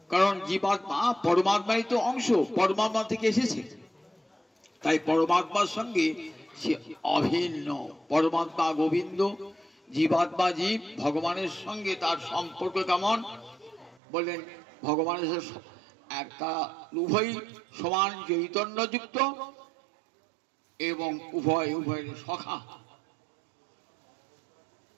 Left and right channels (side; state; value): left; drops out; at 14.0 s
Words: কারণ জীবাত্মা পরমাত্মারই তো অংশ, পরমাত্মা থেকে এসেছে, তাই পরমাত্মার সঙ্গে সে অভিন্ন। পরমাত্মা গোবিন্দ, জীবাত্মা জীব, ভগবানের সঙ্গে তার সম্পর্ক কেমন বললেন? ভগবানের একটা উভয় সমান চৈতন্যযুক্ত এবং উভয়ের সখা।